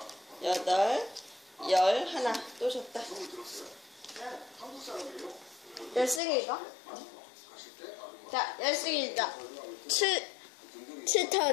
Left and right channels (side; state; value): right; drops out; at 6.2 s